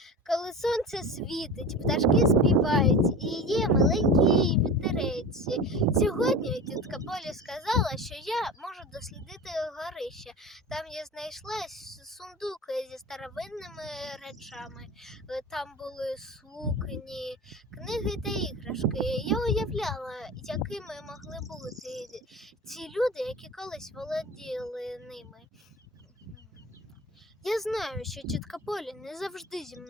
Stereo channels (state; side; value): normal; both; correlation 0.32